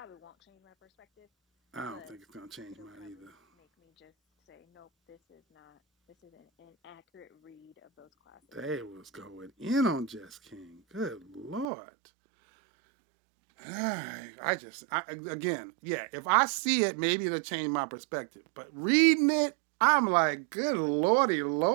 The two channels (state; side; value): drops out; left; at 11.7 s